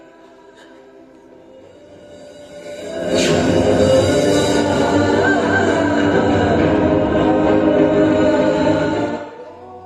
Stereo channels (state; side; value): identical; both; correlation 1.00